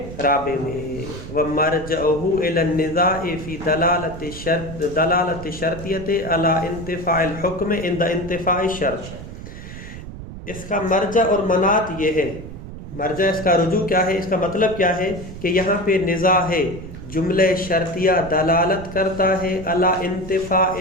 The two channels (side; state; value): right; noise; rumble, 12 dB below the sound